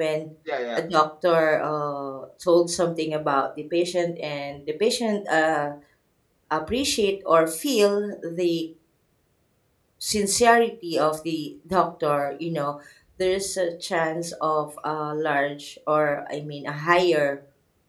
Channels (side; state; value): both; identical; correlation 1.00